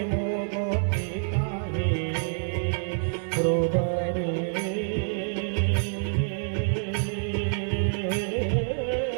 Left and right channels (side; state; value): left; silent; 60 dB below the other